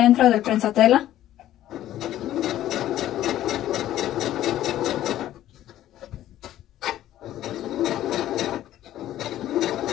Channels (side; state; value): right; quieter; 13.1 dB